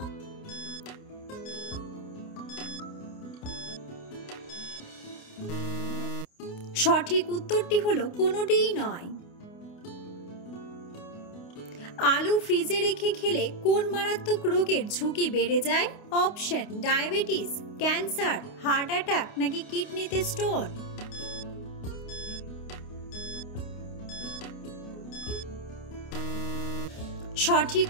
সঠিক উত্তরটি হলো কোনোটিই নয়। আলু ফ্রিজে রেখে খেলে কোন মারাত্মক রোগের ঝুঁকি বেড়ে যায়? Option: diabetes, cancer, heart attack নাকি কিডনিতে স্টোন? সঠিক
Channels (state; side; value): late; right; 29 ms